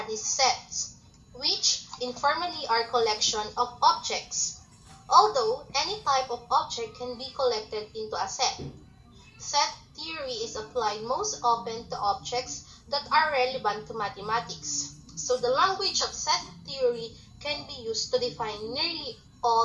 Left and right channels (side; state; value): both; identical; correlation 1.00